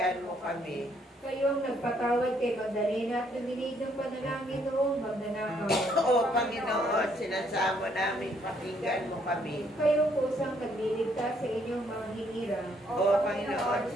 mo kami. kayong nagpatawad kay Magdalena at luminig ng panalangin noong magnanakaw, O Panginoon, sinasamo naming pakinggan mo kami. kayong kusang nagliligtas sa inyong mga hinira, O Panginoon,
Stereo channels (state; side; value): normal; both; correlation 0.69